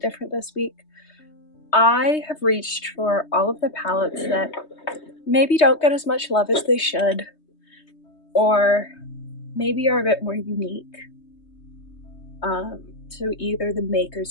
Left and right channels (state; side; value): late; right; 3.2 ms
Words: different this week. I have reached for all of the palettes that maybe don't get as much love as they should, or maybe are a bit more unique. So either the